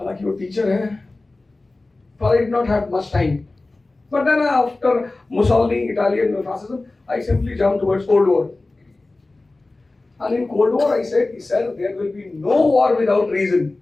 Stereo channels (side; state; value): right; quieter; 3.1 dB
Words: वो टीचर है, but I did not have much time. But then after Mussolini, Italian fascism, I simply jumped towards Cold War. And in Cold War, I said, sir, there will be no war without reason.